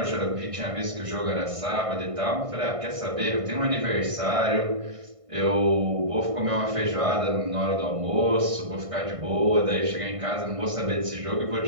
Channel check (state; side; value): late; left; 1.6 ms